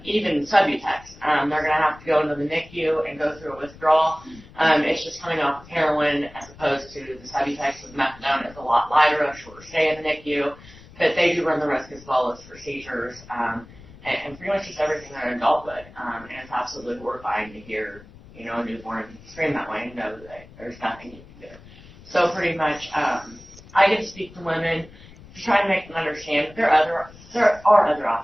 even Subutex, they're going to have to go into the NICU and go through a withdrawal. It's just coming off of heroin as opposed to the Subutex with methadone. It's a lot lighter, a shorter stay in the NICU, but they do run the risk as well as for seizures and pretty much just everything that an adult would. And it's absolutely horrifying to hear, a newborn scream that way and know that there's nothing you can do. So pretty much, I get to speak to women to try to make them understand that there are other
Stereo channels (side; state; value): left; noise; rumble, 21 dB below the sound